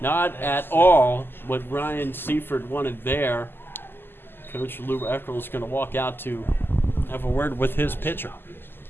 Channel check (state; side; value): late; right; 0.10 ms